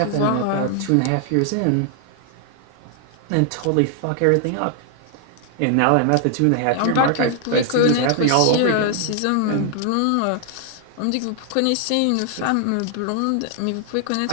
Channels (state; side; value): different; both; correlation 0.00